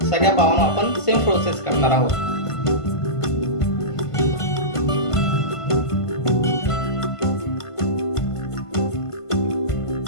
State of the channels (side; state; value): right; late; 1.5 ms